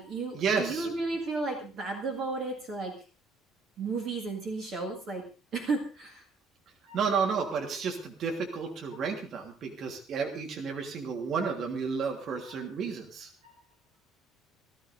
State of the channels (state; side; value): quieter; left; 4.6 dB